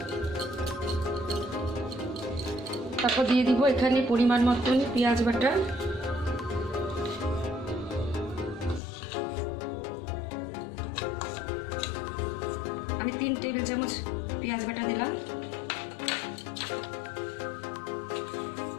তারপর দিয়ে দিব এখানে পরিমাণ মতন পেঁয়াজ বাটা, আমি 3 টেবিল চামচ পেঁয়াজ বাটা দিলাম।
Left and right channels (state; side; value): drops out; right; at 8.8 s